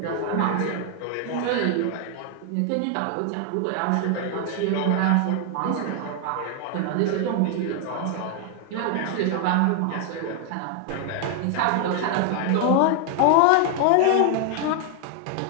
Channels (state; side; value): different; both; correlation 0.00